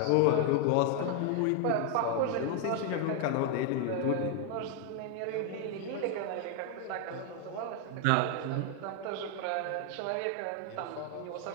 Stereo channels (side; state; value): both; different; correlation 0.00